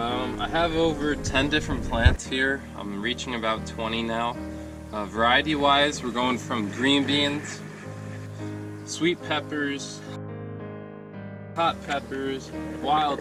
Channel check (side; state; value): both; identical; correlation 1.00